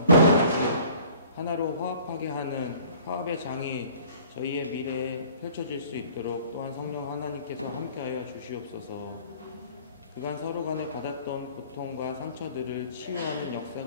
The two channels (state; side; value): inverted; both; correlation -0.51